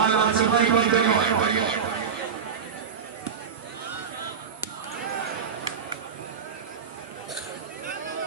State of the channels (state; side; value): quieter; left; 6.7 dB